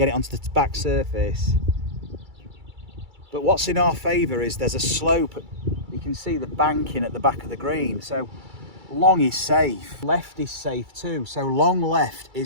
it onto the back surface. But what's in our favour is there's a slope. You can see the banking at the back of the green. So long is safe. Left is safe too. So long left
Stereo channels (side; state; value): left; late; 2.3 ms